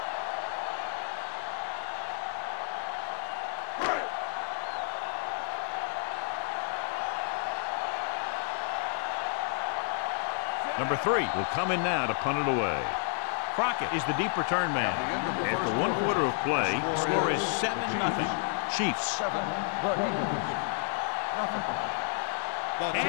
Number 3 will come in now to punt it away. Crockett is the deep return man. After 1 quarter of play, the score is 7-0. Chiefs.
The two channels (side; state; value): right; silent; 57 dB below the other